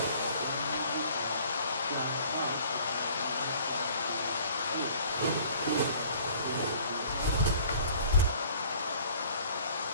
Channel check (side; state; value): both; inverted; correlation -0.53